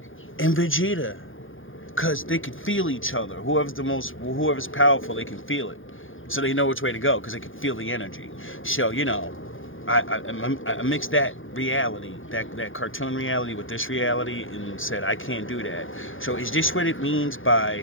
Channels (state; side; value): late; right; 0.58 ms